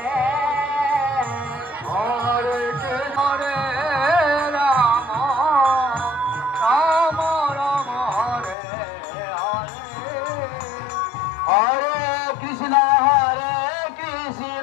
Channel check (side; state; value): right; drops out; at 8.6 s